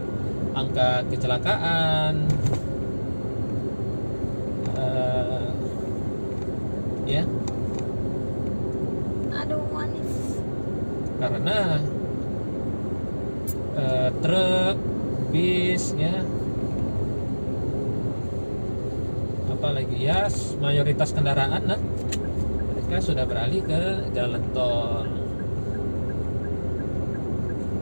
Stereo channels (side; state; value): both; inverted; correlation -1.00